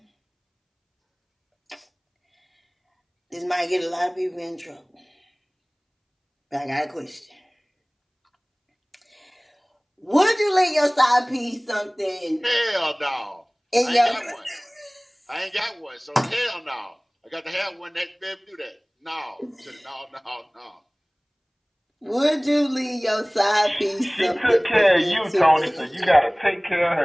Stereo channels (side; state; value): both; identical; correlation 1.00